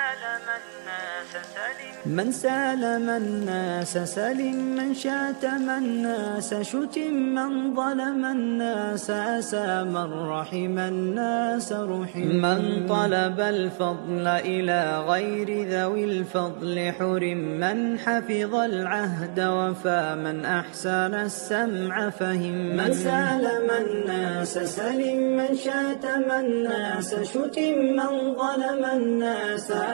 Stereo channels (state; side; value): silent; left; digital silence